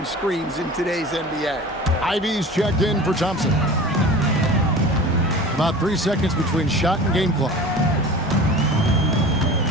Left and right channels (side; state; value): both; normal; correlation 0.38